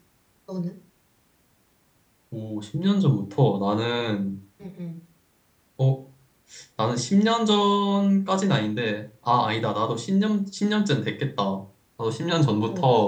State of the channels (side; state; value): both; identical; correlation 1.00